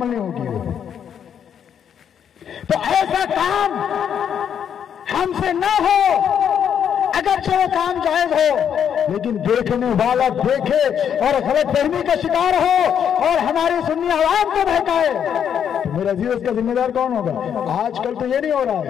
نہیں ہوگی. تو ایسا کام ہم سے نہ ہو، اگرچہ وہ کام جائز ہو، لیکن دیکھنے والا دیکھے اور غلط فہمی کا شکار ہو اور ہماری سنی عوام کو بہکائے تو میرا عزیز اس کا ذمہ دار کون ہوگا؟ آج کل تو یہ نہیں ہو رہا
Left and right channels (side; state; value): right; quieter; 8.5 dB